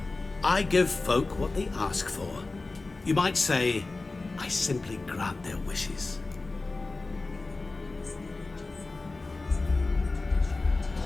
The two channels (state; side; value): quieter; right; 3.4 dB